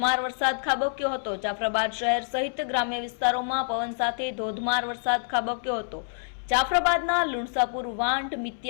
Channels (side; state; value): right; silent; 60 dB below the other